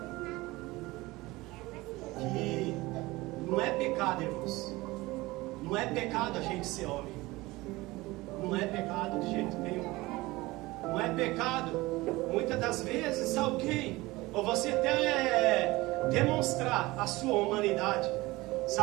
que não é pecado, irmãos, Não é pecado a gente ser homem. Não é pecado de jeito nenhum. Não é pecado, muitas das vezes, alguém, ou você até demonstrar a sua humanidade.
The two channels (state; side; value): quieter; left; 20.6 dB